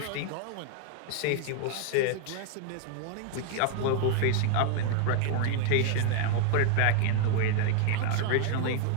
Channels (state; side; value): different; both; correlation 0.00